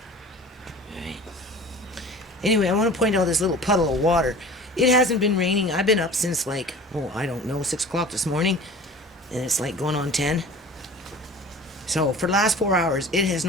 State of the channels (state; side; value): normal; both; correlation 0.41